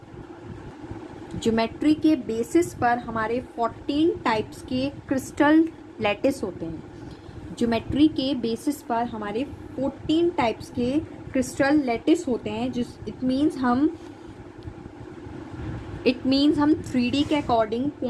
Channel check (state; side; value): identical; both; correlation 1.00